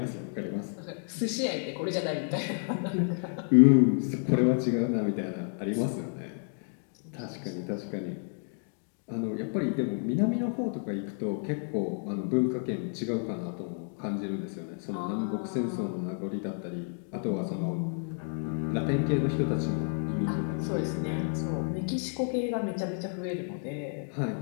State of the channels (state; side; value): silent; right; 57 dB below the other